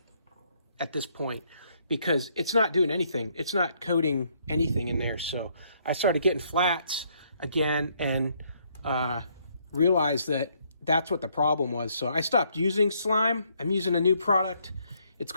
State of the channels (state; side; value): inverted; both; correlation -0.70